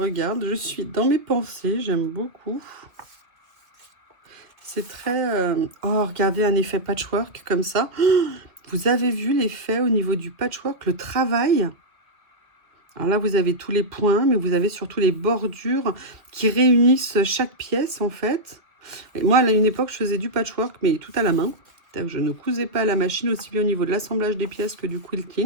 je suis dans mes pensées, j'aime beaucoup. C'est très... Oh, regardez un effet patchwork comme ça. Vous avez vu l'effet au niveau du patchwork, le travail? Alors là, vous avez tous les points, mais vous avez surtout les bordures qui réunissent chaque pièce, en fait. Et moi, à une époque, je faisais du patchwork, mais tout à la main. Je ne cousais pas à la machine, aussi bien au niveau de l'assemblage des pièces que du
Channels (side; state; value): left; late; 2.0 ms